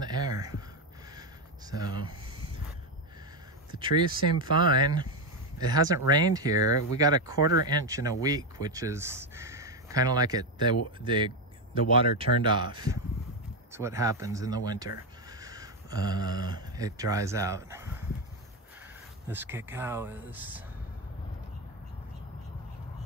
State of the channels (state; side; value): normal; both; correlation 0.09